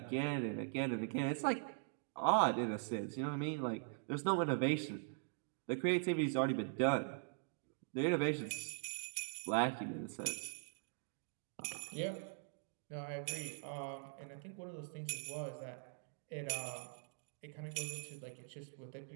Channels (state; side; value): silent; left; digital silence